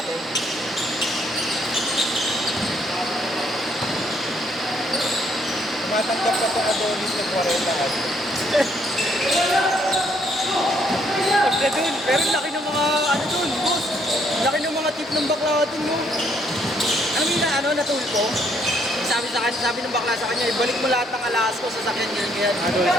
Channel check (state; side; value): normal; both; correlation 0.69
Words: Tumatanggap ka sa Adonis ng 40 at Pagka dun, pero laki ng mga, ano dun, boss. Laki ng mga tip ng bakla dun, no? Alam mo yun na, ano, natulpo? Sabi sa kanya, sabi ng bakla sa kanya, ibalik mo lahat ng alas ko sa sakyan ganyan. Adonis